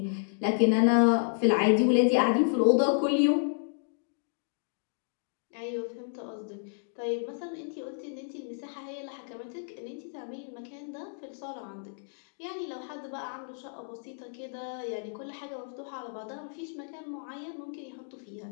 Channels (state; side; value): silent; right; digital silence